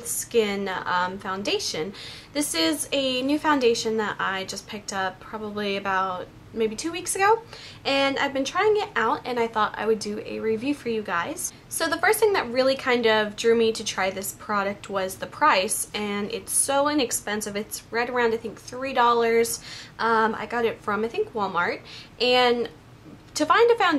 Skin foundation. This is a new foundation that I just picked up probably about maybe 2 weeks ago, and I've been trying it out and I thought I would do a review for you guys. So the first thing that really kind of drew me to try this product was the price, and it's so inexpensive. It's right around I think $3. I got it from I think Walmart, and to find a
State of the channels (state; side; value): identical; both; correlation 1.00